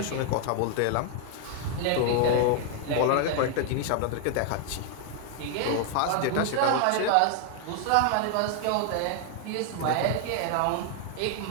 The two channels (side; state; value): both; different; correlation 0.00